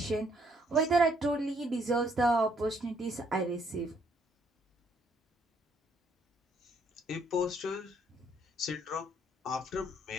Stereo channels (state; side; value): normal; both; correlation 0.68